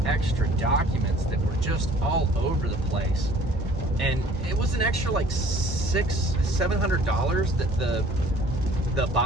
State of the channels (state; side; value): normal; both; correlation 0.53